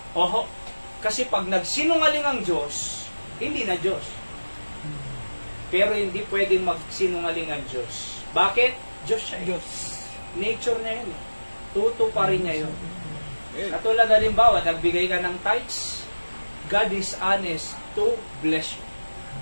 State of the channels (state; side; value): inverted; both; correlation -1.00